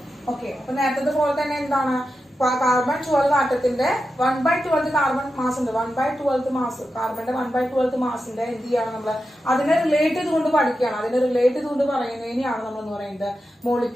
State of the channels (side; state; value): both; normal; correlation 0.90